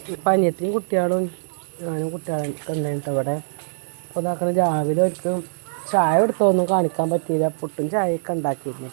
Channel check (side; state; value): left; silent; digital silence